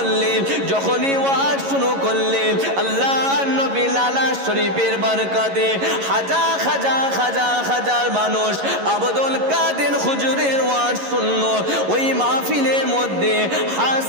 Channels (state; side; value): late; left; 11 ms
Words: যখনই ওয়াজ শুরু করলেন, আল্লাহ নবী লালা শরীফের বরকতে হাজার হাজার হাজার হাজার মানুষ আব্দুল কাদের হুজুরের ওয়াজ শুনলো, ওই মাহফিলের মধ্যে